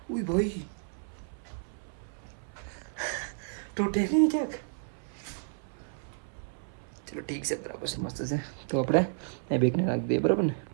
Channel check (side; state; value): left; silent; 57 dB below the other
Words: ઉઈ ભાઈ તૂટે નહીં ક્યાંક. ચલો ઠીક છે, બરાબર છે, મસ્ત છે. તો આપણે એ બેગને નાખી દઈએ, બરાબર ને?